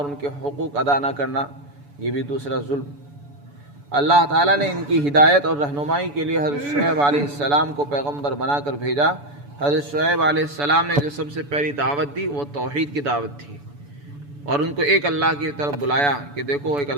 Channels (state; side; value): late; left; 7.0 ms